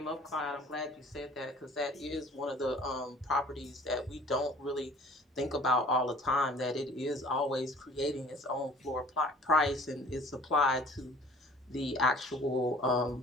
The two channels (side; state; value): both; normal; correlation 0.50